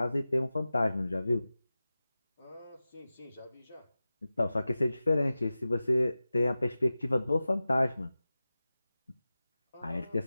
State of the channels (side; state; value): both; inverted; correlation -0.96